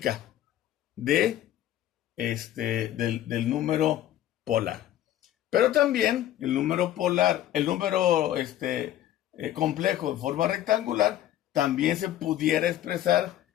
del número polar. Pero también el número polar, el número complejo en forma rectangular, también se pudiera expresar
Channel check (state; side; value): quieter; right; 12.6 dB